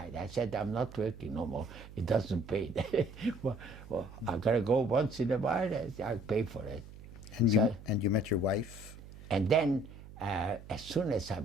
I said, I'm not working no more. It doesn't pay. well, I gotta go once in a while. I'll pay for it. And you met your wife? And then, as soon as I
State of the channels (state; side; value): noise; right; hum, 16 dB below the sound